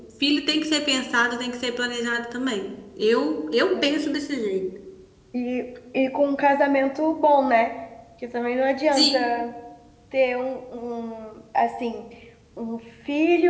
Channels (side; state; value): both; identical; correlation 1.00